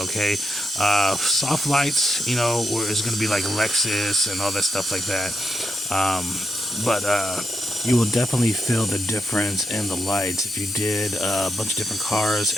okay? Soft lights, you know, where it's going to be like Lexus and all that stuff like that. But you will definitely feel the difference in the lights. If you did a bunch of different cars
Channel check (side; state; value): both; normal; correlation 0.84